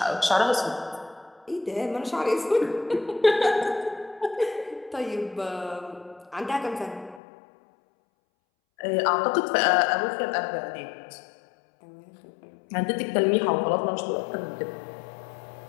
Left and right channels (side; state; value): right; drops out; at 7.2 s